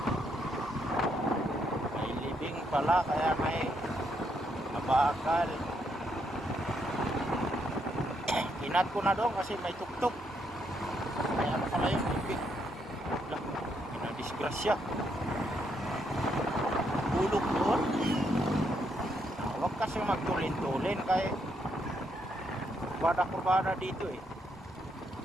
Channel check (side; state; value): both; normal; correlation 0.76